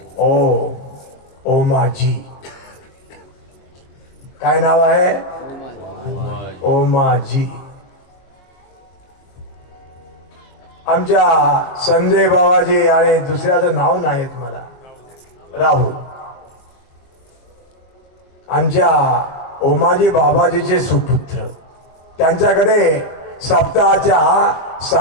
ओमाजी काय नाव आहे ओमाजी आमच्या संजय बाबाजी आणि दुसऱ्याचं नाव नाहीत मला राहुल आमच्या ओमाजी बाबाजीचे सुपुत्र त्यांच्याकडे सप्ताहाच्या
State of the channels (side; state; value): right; late; 23 ms